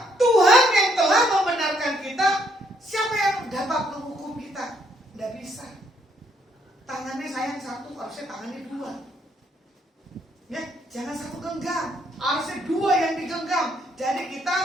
Tuhan yang telah membenarkan kita. Siapa yang dapat menghukum kita? Tidak bisa. Tangannya sayang satu, harusnya tangannya 2. Ya, jangan satu genggam, harusnya 2 yang digenggam. Jadi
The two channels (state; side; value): normal; both; correlation 0.70